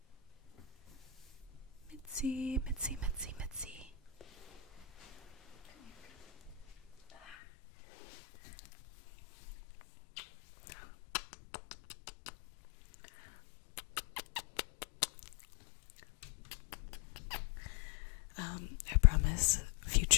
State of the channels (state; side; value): drops out; right; at 7.4 s